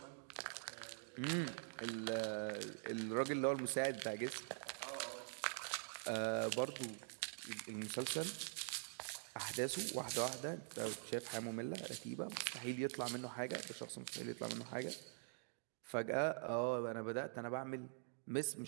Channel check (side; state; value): left; silent; digital silence